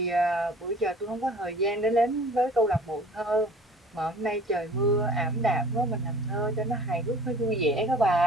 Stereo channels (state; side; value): normal; both; correlation 0.48